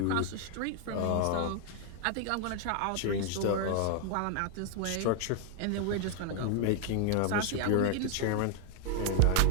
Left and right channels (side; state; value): both; different; correlation 0.00